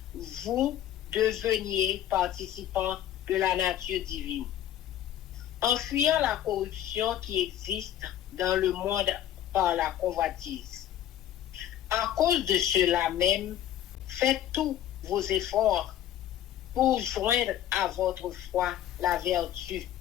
vous deveniez participants de la nature divine, en fuyant la corruption qui existe dans le monde par la convoitise. À cause de cela même, faites tous vos efforts pour joindre à votre foi la vertu,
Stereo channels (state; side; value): quieter; right; 11.5 dB